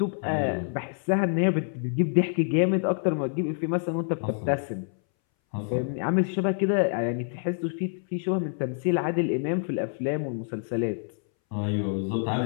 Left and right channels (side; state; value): right; silent; 60 dB below the other